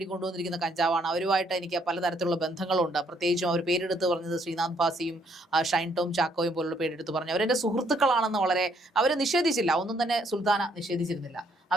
കൊണ്ടുവന്നിരിക്കുന്ന കഞ്ചാവാണ്. അവരുമായിട്ട് എനിക്ക് പലതരത്തിലുള്ള ബന്ധങ്ങളുണ്ട്. പ്രത്യേകിച്ചും അവർ പേരെടുത്ത് പറഞ്ഞത് ശ്രീനാഥ് ഭാസിയും ഷൈൻ ടോം ചാക്കോയും പോലുള്ള പേരെടുത്ത് പറഞ്ഞു. അവരെൻ്റെ സുഹൃത്തുക്കളാണെന്ന് വളരെ അവർ നിഷേധിച്ചില്ല. ഒന്നും തന്നെ സുൽത്താന നിഷേധിച്ചിരുന്നില്ല.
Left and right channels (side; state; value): both; normal; correlation 0.69